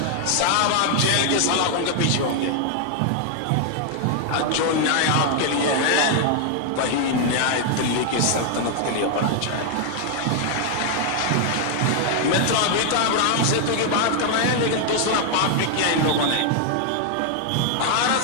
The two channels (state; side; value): different; both; correlation 0.00